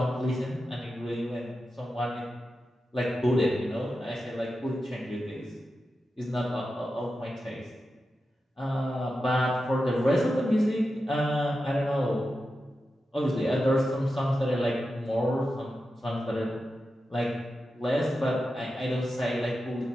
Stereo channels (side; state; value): both; normal; correlation 0.91